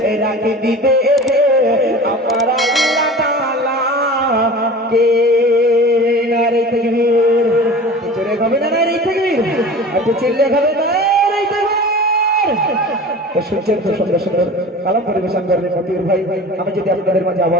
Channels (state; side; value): normal; both; correlation 0.37